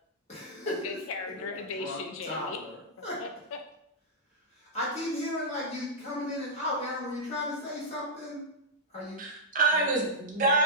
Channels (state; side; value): normal; both; correlation -0.09